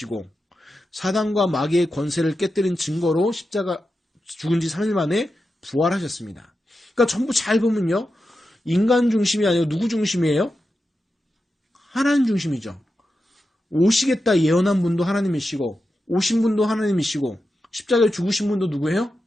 사단과 마귀의 권세를 깨뜨린 증거로 십자가 죽은 지 3일 만에 부활하셨습니다. 그러니까 전부 잘 보면요 인간 중심이 아니고 누구 중심이에요? 하나님 중심이죠. 오시겠다 예언한 분도 하나님이시고 오신 분도 하나님이시고 십자가에 죽으신 분도 누구예요?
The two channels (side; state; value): both; normal; correlation 0.90